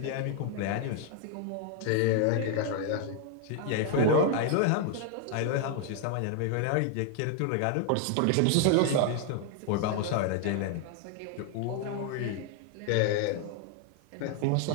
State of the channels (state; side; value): different; both; correlation 0.00